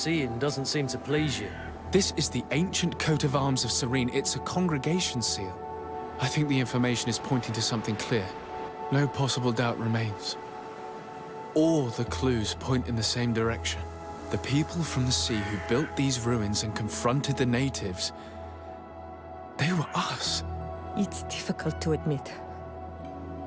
doesn't seem to please you. This is the ancient coat of arms of Serene. It's a congregation seal. I think the information is pointing to something clear. No possible doubt remains. All the clues point in the same direction. The people from the sea who built these ruins and confronted the natives, they were us. It's difficult to admit.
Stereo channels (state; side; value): identical; both; correlation 1.00